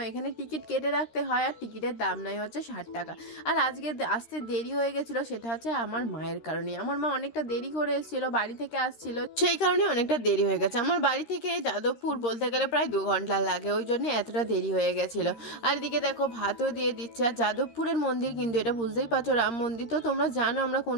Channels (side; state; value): right; late; 13 ms